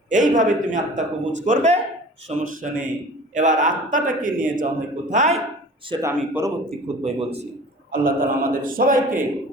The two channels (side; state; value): both; normal; correlation 0.43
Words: এইভাবে তুমি আত্মা কবুজ করবে, সমস্যা নেই। এবার আত্মাটাকে নিয়ে যাওয়া হয় কোথায়, সেটা আমি পরবর্তী খুতবায় বলছি। আল্লাহ তাআলা আমাদের সবাইকে